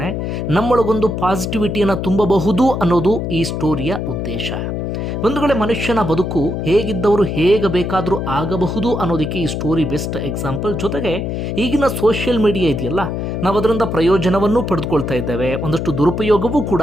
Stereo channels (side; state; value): left; noise; hum, 3 dB below the sound